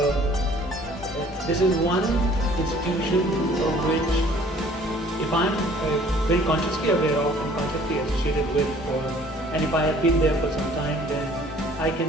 this is one institution of which, if I'm very consciously aware of and consciously associated with, and if I have been there for some time, then I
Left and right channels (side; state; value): both; normal; correlation 0.55